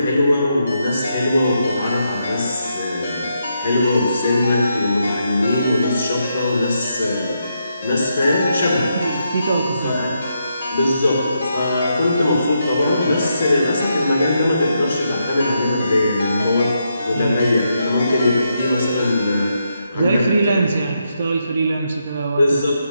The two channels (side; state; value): both; inverted; correlation -0.81